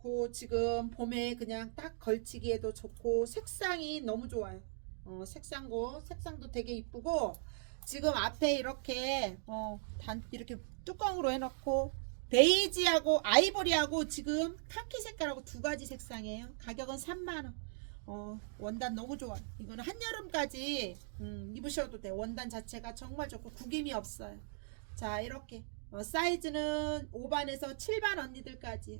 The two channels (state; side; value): silent; left; digital silence